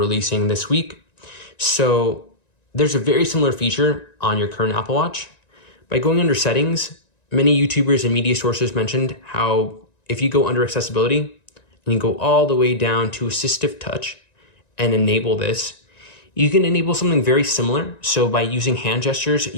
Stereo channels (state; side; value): late; right; 1.9 ms